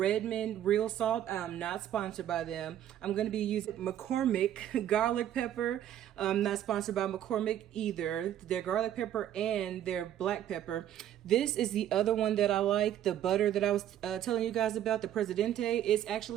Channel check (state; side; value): quieter; left; 11.3 dB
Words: real salt. I'm not sponsored by them. I'm going to be using McCormick garlic pepper. I'm not sponsored by McCormick either. Their garlic pepper and their black pepper. This is the other one that I like, the butter that I was telling you guys about, the Presidente. It's